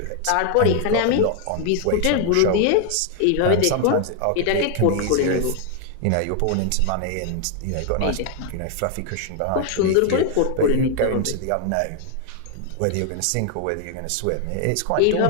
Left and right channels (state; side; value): different; both; correlation 0.00